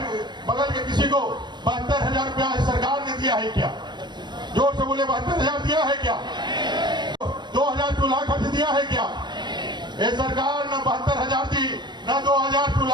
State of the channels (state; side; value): late; left; 0.22 ms